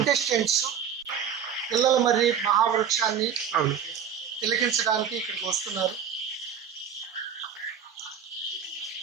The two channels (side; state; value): left; quieter; 8.1 dB